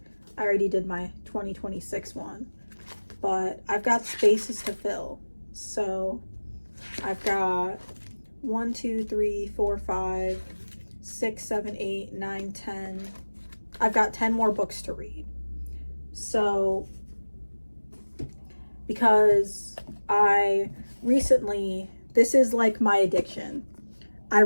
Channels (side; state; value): both; inverted; correlation -1.00